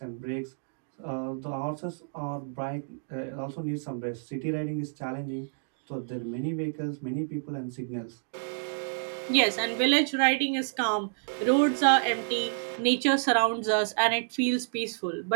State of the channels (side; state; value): left; silent; digital silence